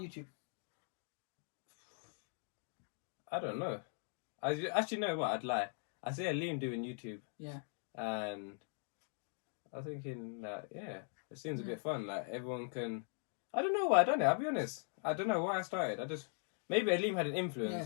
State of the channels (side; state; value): right; silent; 51 dB below the other